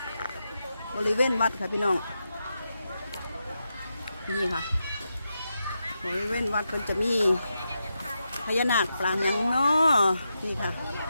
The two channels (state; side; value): inverted; both; correlation -0.87